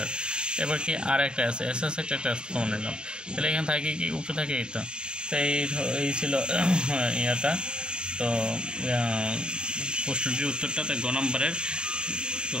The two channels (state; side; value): late; left; 0.050 ms